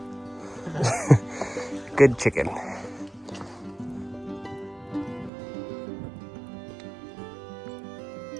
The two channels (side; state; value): left; drops out; at 5.3 s